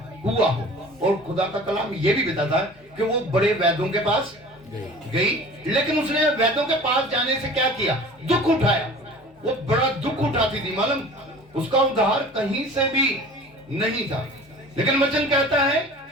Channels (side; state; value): both; normal; correlation 0.42